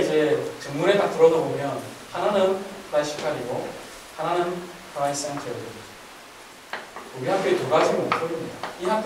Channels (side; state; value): both; identical; correlation 1.00